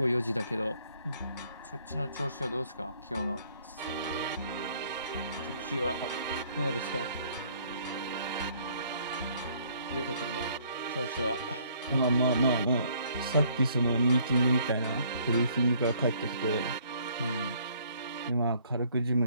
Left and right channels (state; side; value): inverted; both; correlation -0.63